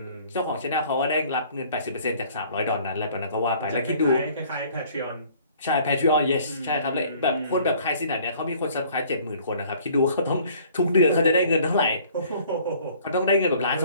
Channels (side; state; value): both; inverted; correlation -0.55